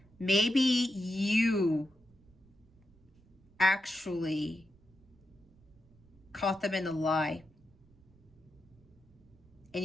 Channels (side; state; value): right; noise; rumble, 28 dB below the sound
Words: maybe you actually caught them in a lie. And